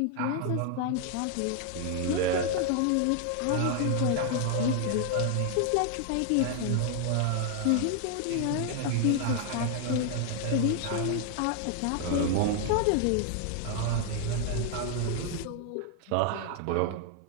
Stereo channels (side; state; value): both; different; correlation 0.00